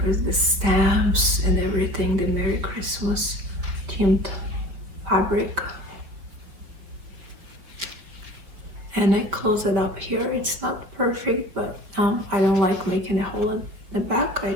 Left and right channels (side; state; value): left; late; 5.0 ms